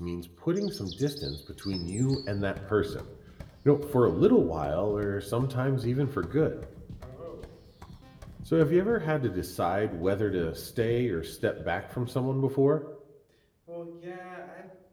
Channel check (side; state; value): both; identical; correlation 1.00